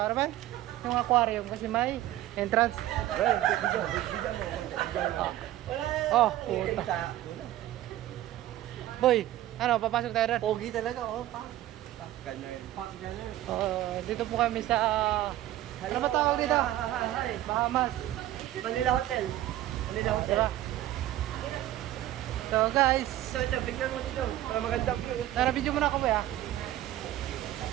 ano ba? Yung aquarium kasi may entrance. Oh, puta. Boy, ano, papasok tayo rin. Pogi talaga, oh, pa. Ganyan. Dito po kami sa, ano ba tawag dito? Hi. Bahamas. Manila Hotel. Manila Hotel. Diba? So guys, So, ito, bigyan mo dito. Para maganda view. tara video muna ako boy ha.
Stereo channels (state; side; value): quieter; left; 14.2 dB